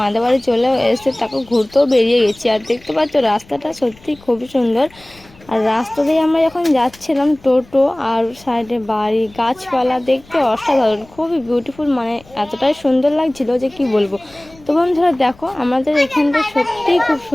বাড়ি চলে এসে তাকে ঘুরতেও বেরিয়ে গেছি। আর দেখতে পাচ্ছ রাস্তাটা সত্যি খুবই সুন্দর। আর রাস্তা দিয়ে আমরা যখন যাচ্ছিলাম টোটো আর সাইডে বাড়ি গাছপালা দেখতে অসাধারণ, খুবই বিউটিফুল, মানে এতটাই সুন্দর লাগছিল যে কি বলবো। তো বন্ধুরা দেখো আমাদের এখানটা সত্যিই খুব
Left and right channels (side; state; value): left; noise; rumble, 26 dB below the sound